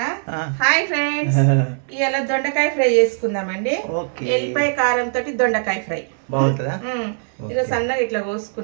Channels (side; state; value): left; silent; 65 dB below the other